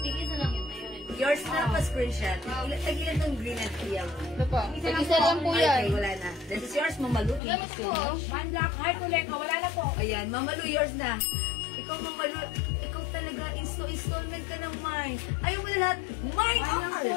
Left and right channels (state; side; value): drops out; right; at 7.4 s